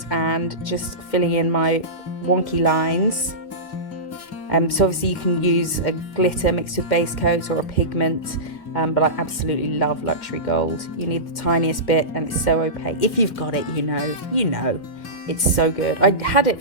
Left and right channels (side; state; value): right; late; 2.1 ms